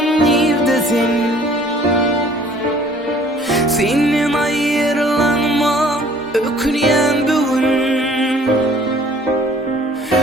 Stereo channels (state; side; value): normal; both; correlation 0.55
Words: neredesin? Senin ayrılanma öküyen bugün,